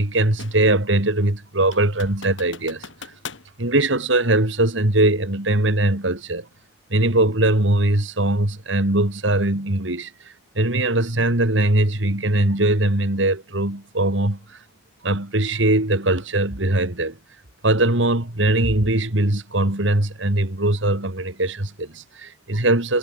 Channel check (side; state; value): both; normal; correlation 0.32